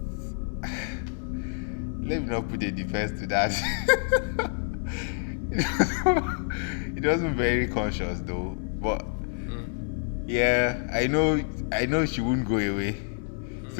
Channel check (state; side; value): silent; right; 60 dB below the other